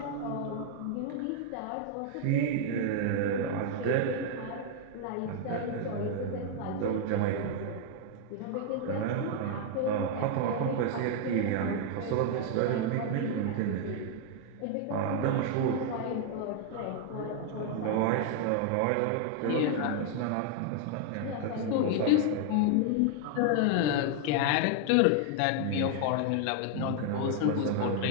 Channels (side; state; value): both; different; correlation 0.00